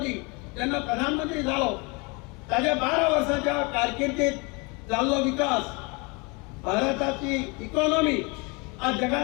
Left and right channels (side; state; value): right; quieter; 29.2 dB